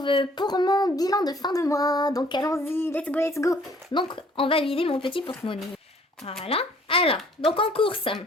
pour mon bilan de fin de mois. Donc allons-y, let's go. Donc on va vider mon petit porte-monnaie. Voilà. Alors, donc en course.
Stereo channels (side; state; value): both; normal; correlation 0.58